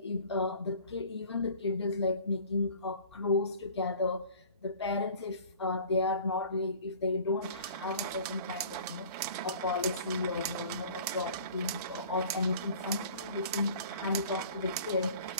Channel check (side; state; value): both; inverted; correlation -0.46